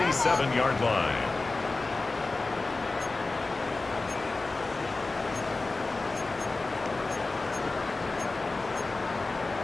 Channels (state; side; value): quieter; right; 3.4 dB